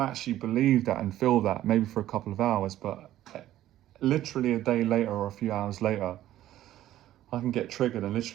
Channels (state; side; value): quieter; left; 13.5 dB